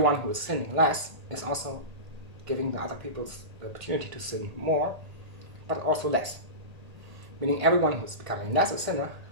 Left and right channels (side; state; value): left; late; 1.8 ms